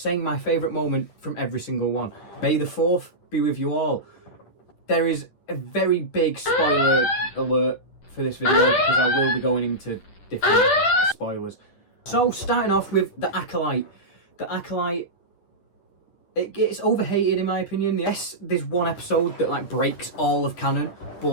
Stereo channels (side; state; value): right; late; 10 ms